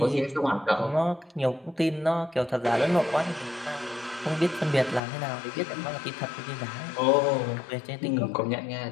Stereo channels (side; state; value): right; drops out; at 5.0 s